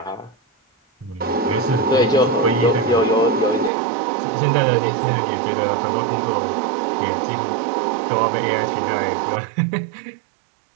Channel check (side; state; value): left; drops out; at 3.7 s